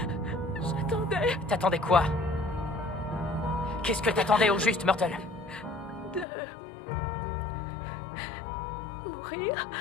T'attendais quoi? Qu'est-ce que t'attendais au juste, Myrtle? De mourir.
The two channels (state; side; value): drops out; right; at 6.2 s